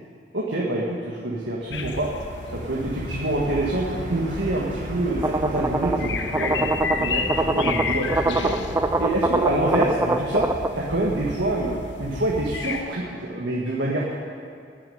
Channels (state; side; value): normal; both; correlation 0.44